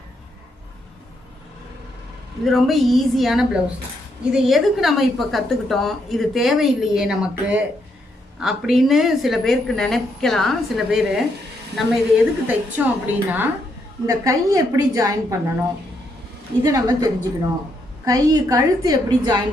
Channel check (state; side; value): normal; both; correlation 0.77